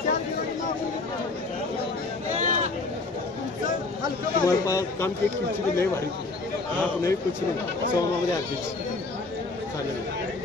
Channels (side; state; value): right; quieter; 3.5 dB